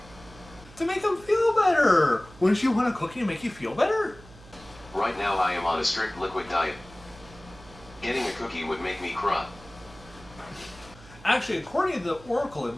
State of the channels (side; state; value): right; noise; hum, 21 dB below the sound